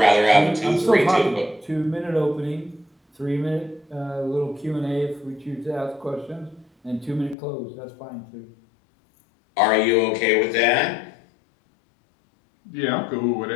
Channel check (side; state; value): right; drops out; at 7.4 s